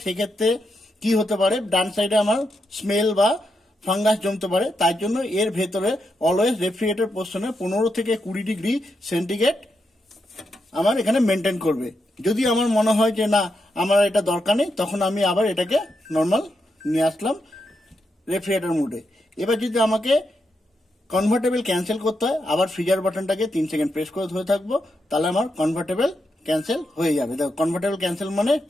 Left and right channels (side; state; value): both; normal; correlation 0.83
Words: সেক্ষেত্রে কি হতে পারে? ডান সাইডে আমার স্মেল বা ফাঙ্গাস জমতে পারে। তাই জন্য এর ভেতরে অলওয়েজ রেফ্রিজারেটর পোর্শনে 15 থেকে 20 ডিগ্রি সেন্টিগ্রেড আমার এখানে মেনটেন করবে। যদি আমার মনে হয় যে না, আমার এটা দরকার নেই, তখন আমি আবার এটাকে নর্মাল নিয়ে আসলাম রেফ্রিজারেটর মোডে। এবার যদি আমাকে কনভার্টেবল ক্যান্সেল করতে হয়, আবার ফ্রিজার বাটনটাকে 3 সেকেন্ড প্রেস করে ধরে থাকবো, তাহলে আমার কনভার্টেবল ক্যান্সেল হয়ে যাবে। দেখো, কনভার্টেবল ক্যান্সেল মানে